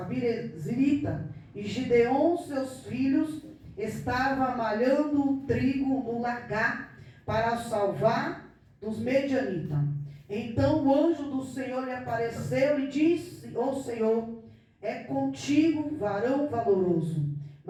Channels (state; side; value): identical; both; correlation 1.00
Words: Birezrita, e Gideon, seus filhos, estava malhando o trigo no lagar para salvar dos medianitas. Então o anjo do Senhor lhe apareceu e disse: ó Senhor, é contigo, varão valoroso.